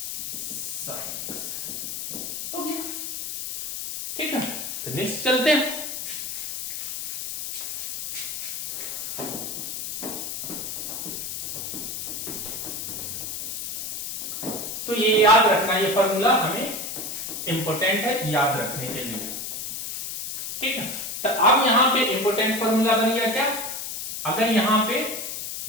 sine x हो गया, ठीक है। तो नेक्स्ट चलते हैं। तो ये याद रखना, ये फॉर्मूला हमें इंपॉर्टेंट है याद रखने के लिए, ठीक है। तो अब यहां पे इंपॉर्टेंट फॉर्मूला बन गया क्या, अगर यहां पे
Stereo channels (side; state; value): left; noise; hiss, 5 dB below the sound